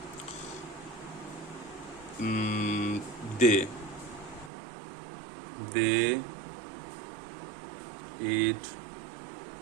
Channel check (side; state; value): left; drops out; at 4.5 s